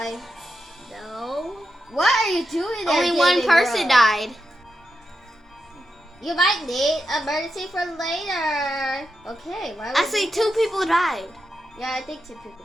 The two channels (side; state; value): both; normal; correlation 0.87